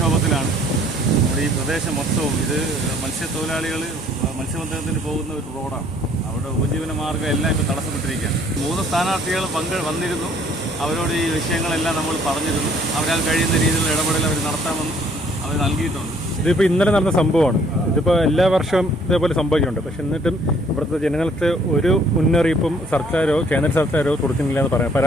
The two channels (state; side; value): normal; both; correlation 0.61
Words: നമ്മുടെ ഈ പ്രദേശം മൊത്തവും. ഇത് മത്സ്യത്തൊഴിലാളികൾ മത്സ്യബന്ധനത്തിന് പോകുന്ന ഒരു റോഡാണ്. അവിടെ ഉപജീവന മാർഗ്ഗം എല്ലാം ഇപ്പോൾ തടസ്സപ്പെട്ടിരിക്കുകയാണ്. 3 സ്ഥാനാർത്ഥികൾ വന്നിരുന്നു. അവരോട് ഈ വിഷയങ്ങളെല്ലാം നമ്മൾ പറഞ്ഞിരുന്നു. അവരാൽ കഴിയുന്ന രീതിയിലുള്ള ഇടപെടൽ അവർ നടത്താമെന്ന് അവർ നൽകിയിട്ടുണ്ട്. ഇതിപ്പോൾ ഇന്നലെ നടന്ന സംഭവമാണ്. ഇതിപ്പോൾ എല്ലാ വർഷവും ഇതേപോലെ സംഭവിക്കുന്നുണ്ട്. പക്ഷെ എന്നിട്ടും ഇവിടുത്തെ ജനങ്ങൾക്ക് ഒരു മുന്നറിയിപ്പും സർക്കാരോ കേന്ദ്ര സർക്കാരോ കൊടുക്കുന്നില്ല എന്ന്